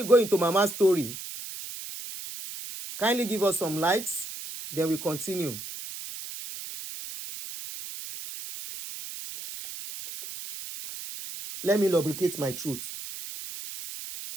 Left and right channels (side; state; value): right; noise; hiss, 10 dB below the sound